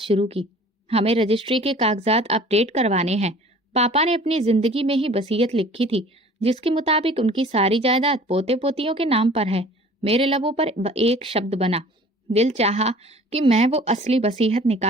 की। हमें रजिस्ट्री के कागजात अपडेट करवाने हैं। पापा ने अपनी जिंदगी में ही वसीयत लिखी थी, जिसके मुताबिक उनकी सारी जायदाद पोते पोतियों के नाम पर है। मेरे लबों पर एक शब्द बना। दिल चाहा कि मैं वो असली वसीयत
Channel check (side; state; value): both; normal; correlation 0.48